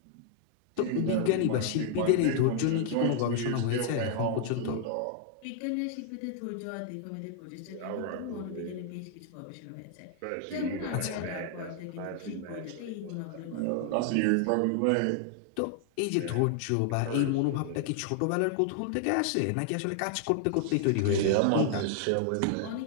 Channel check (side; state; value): both; different; correlation 0.00